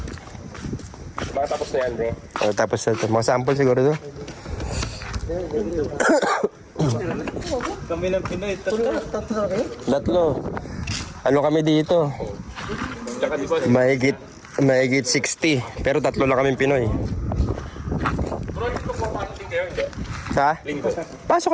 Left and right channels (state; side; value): identical; both; correlation 1.00